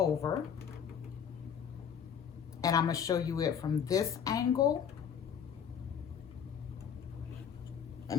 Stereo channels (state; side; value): quieter; right; 7.9 dB